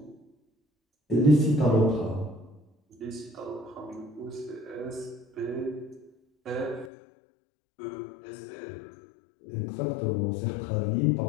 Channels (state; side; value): drops out; right; at 6.9 s